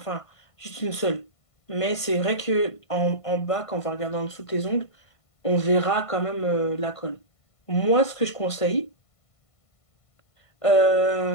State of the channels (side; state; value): right; late; 1.5 ms